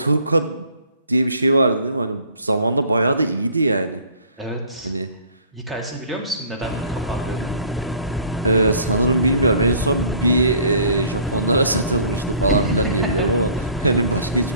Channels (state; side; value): inverted; both; correlation -0.53